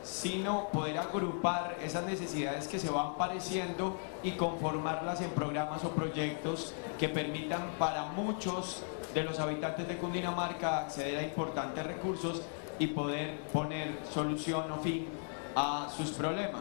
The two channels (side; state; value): right; silent; 54 dB below the other